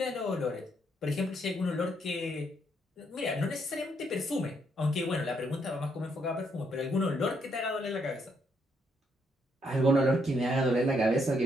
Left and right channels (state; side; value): normal; both; correlation 0.74